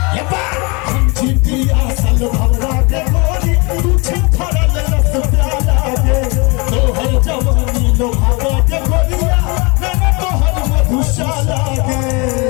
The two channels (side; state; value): right; quieter; 29.0 dB